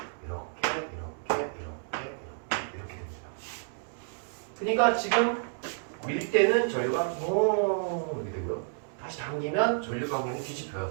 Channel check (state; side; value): silent; left; digital silence